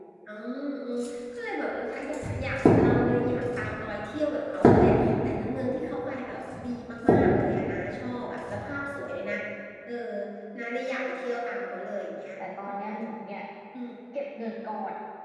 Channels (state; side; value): identical; both; correlation 1.00